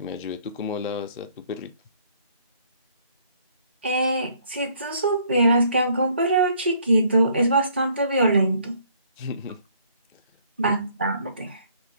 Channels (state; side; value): inverted; both; correlation -0.63